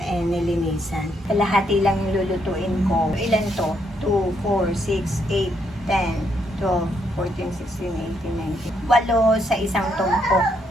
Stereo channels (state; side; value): normal; both; correlation 0.75